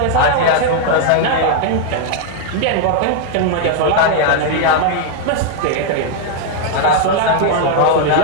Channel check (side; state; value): both; different; correlation 0.00